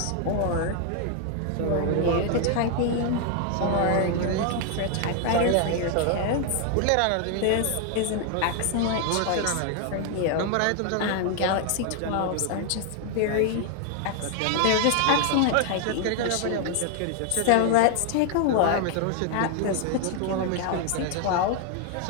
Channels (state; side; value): different; both; correlation 0.00